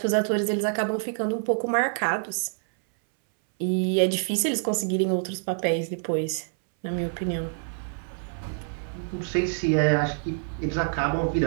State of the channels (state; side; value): silent; left; 61 dB below the other